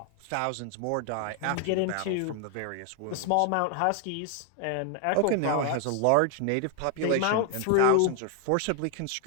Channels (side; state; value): both; different; correlation 0.00